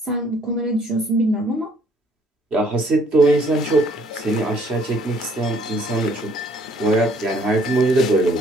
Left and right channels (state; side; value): normal; both; correlation 0.62